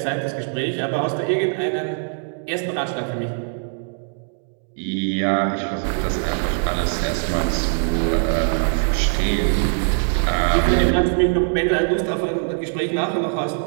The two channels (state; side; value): silent; left; 59 dB below the other